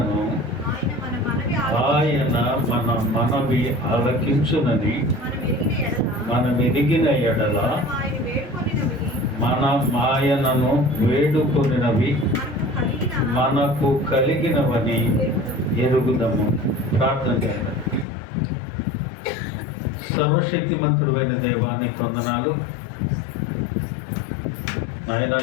ఆయన మన మనవి ఆలకించునని మనం ఎదిగిన ఎడల ఆయనను వేడుకొనినవి మనకు కలిగినవని ఎరుగుదము. ప్రార్థన చేయండి. సర్వశక్తిమంతుడైన దేవానికి వందనాలు. ఆయన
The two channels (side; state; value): right; drops out; at 18.1 s